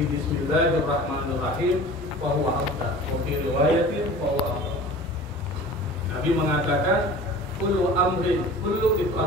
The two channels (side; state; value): both; normal; correlation 0.41